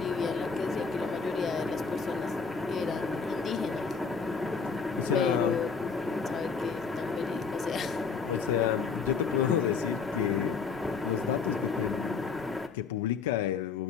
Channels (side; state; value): right; quieter; 5.3 dB